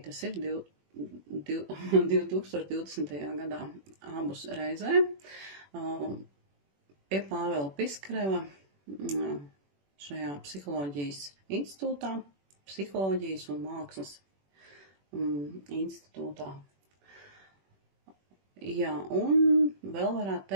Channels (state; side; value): late; left; 21 ms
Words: tas ir 2020. gadā abus reizē pie Pāvela Piskareva šajā psiholoģijas institūtā, psiholoģijas un mākslas institūtā. Jā, un vēl varētu